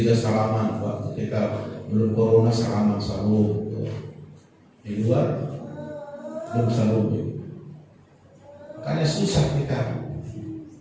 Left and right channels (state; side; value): identical; both; correlation 1.00